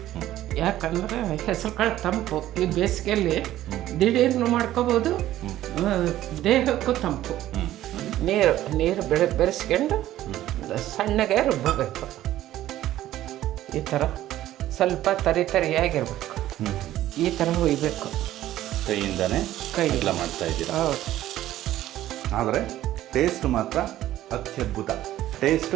ಯಾಕಂದರೆ ಹೆಸರು ಕಾಳು ತಂಪು, ಈ ಬೇಸಿಗೆಯಲ್ಲಿ ದಿಢೀರ್ನು ಮಾಡ್ಕೋಬೋದು, ದೇಹಕ್ಕೂ ತಂಪು. ನೀರು ಬೆರೆಸ್ಕೊಂಡು ಸಣ್ಣಗೆ ರುಬ್ಬಬೇಕು. ಈ ಥರ ಸ್ವಲ್ಪ ತರಿಯಾಗಿರ್ಬೇಕು, ಈ ಥರ ಹುಯ್ಬೇಕು. ಕೈಯಿಂದನೇ ಎಲ್ಲ ಮಾಡ್ತಾ ಇದ್ದೀರಾ? ಹೌದು. ಆದರೆ ಟೇಸ್ಟ್ ಮಾತ್ರ ಅತ್ಯದ್ಭುತ.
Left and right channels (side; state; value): left; quieter; 13.7 dB